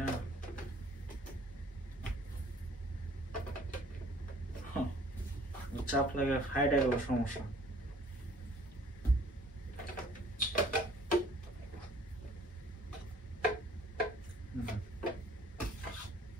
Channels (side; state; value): both; normal; correlation 0.55